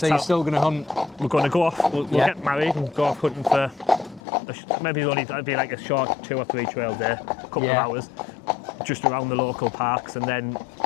you're still going to hunt? We're going to go off, we'll get married and go off hunting for, maybe it'll be like a short 2 or 3 trail day, a couple of hours, just around the local parks, and then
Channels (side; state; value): right; drops out; at 4.2 s